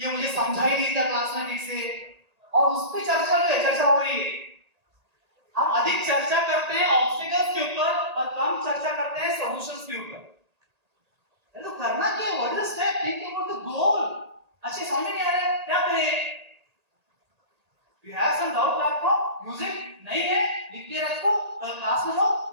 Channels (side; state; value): left; late; 1.8 ms